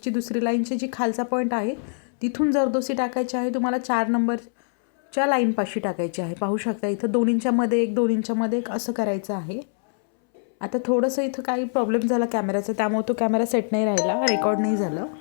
दुसरी लाईनची जी खालचा पॉईंट आहे तिथून जरदोसी टाकायची आहे. तुम्हाला 4 नंबरच्या लाईनपाशी टाकायची आहे. पाहू शकता इथं 2 इंचामध्ये 1 2 इंचामध्ये 1 असं करायचं आहे. आता थोडंसं इथं काही प्रॉब्लेम झाला कॅमेराचा, त्यामुळे तो कॅमेरा सेट नाही राहिला, रेकॉर्ड नाही झालं.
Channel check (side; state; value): right; silent; 63 dB below the other